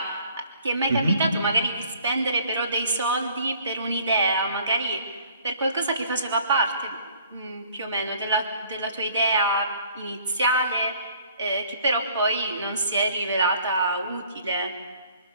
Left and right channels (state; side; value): inverted; both; correlation -0.57